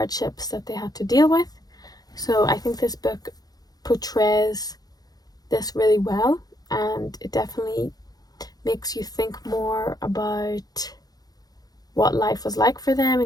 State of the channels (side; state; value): right; late; 0.19 ms